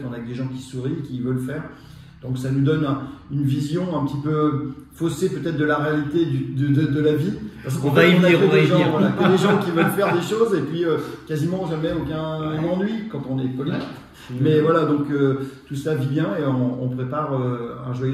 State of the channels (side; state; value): both; identical; correlation 1.00